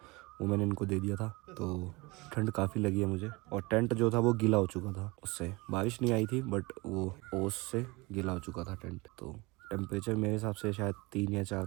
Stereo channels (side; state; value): left; quieter; 24.4 dB